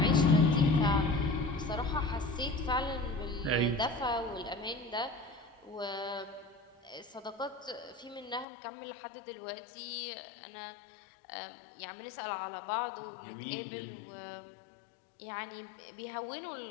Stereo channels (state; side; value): drops out; right; at 8.5 s